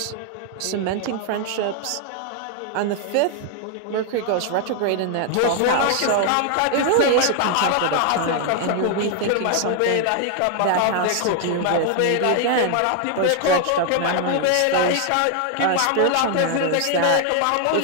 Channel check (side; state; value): both; different; correlation 0.00